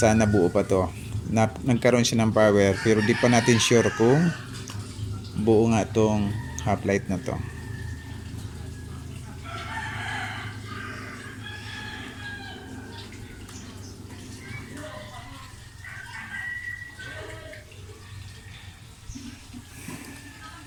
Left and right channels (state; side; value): identical; both; correlation 1.00